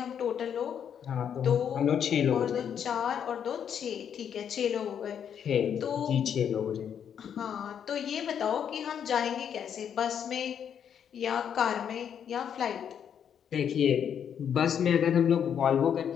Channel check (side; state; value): right; quieter; 8.4 dB